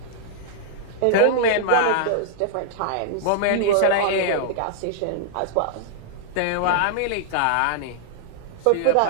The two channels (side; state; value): both; different; correlation -0.01